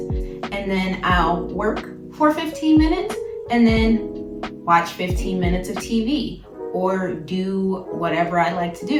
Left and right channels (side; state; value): both; identical; correlation 1.00